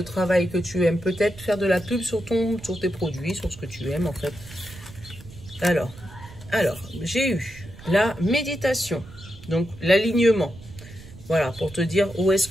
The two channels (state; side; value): noise; right; rumble, 18 dB below the sound